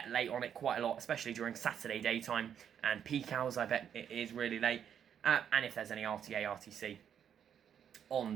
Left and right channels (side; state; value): left; quieter; 8.7 dB